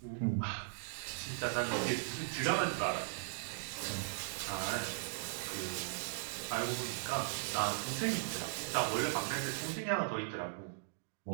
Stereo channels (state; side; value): silent; left; digital silence